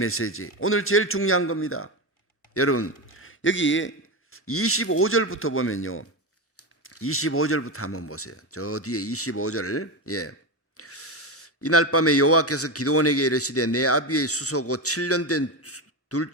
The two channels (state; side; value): normal; both; correlation 0.16